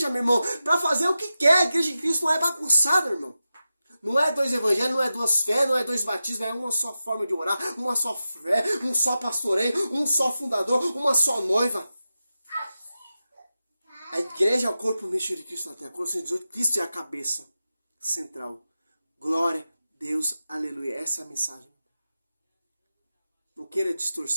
meu irmão. Para fazer o que quer. A igreja de Cristo não é bagunçada, meu irmão. Não é 2 evangelhos, não é 2 fé, não é 2 batismos, é uma só forma de orar, uma só fé, um só pastoreio, um só fundador, uma só noiva. A igreja é o corpo místico de Cristo na terra. Colossenses 18, Cristo é a cabeça central. Glória a Deus, aleluia. Essa é a mensagem. Não queira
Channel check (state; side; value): inverted; both; correlation -0.92